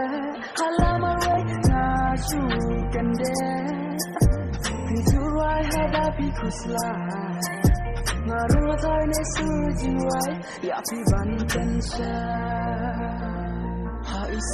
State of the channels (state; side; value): identical; both; correlation 1.00